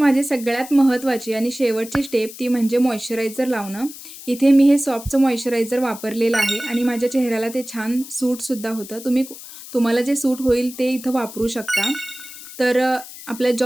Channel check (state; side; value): noise; left; hiss, 15 dB below the sound